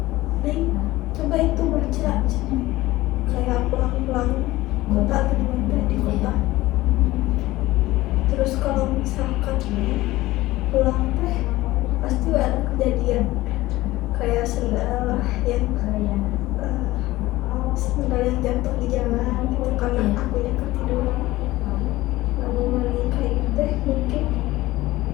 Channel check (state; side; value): quieter; right; 17.9 dB